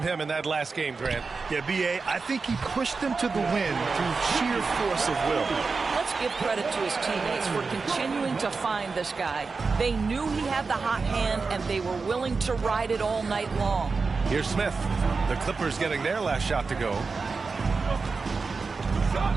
in that last game, Grant. Yeah, B.A., I think he pushed them to the win through sheer force of will. Let's give credit to his teammates for continuing to find this guy. They knew he had the hot hand, and they were willing to ride it all night long. Here's Smith. The Clippers getting their last shot to go.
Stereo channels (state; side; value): quieter; left; 4.5 dB